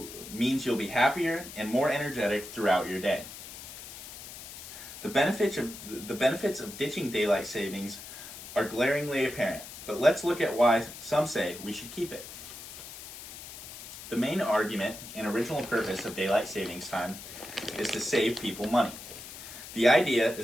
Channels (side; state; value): left; noise; hiss, 13 dB below the sound